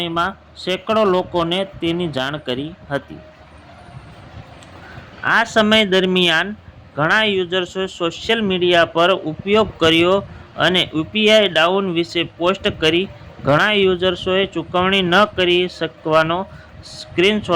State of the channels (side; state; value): both; identical; correlation 1.00